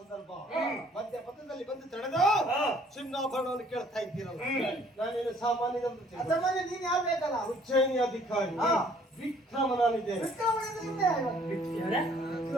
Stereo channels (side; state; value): both; normal; correlation 0.59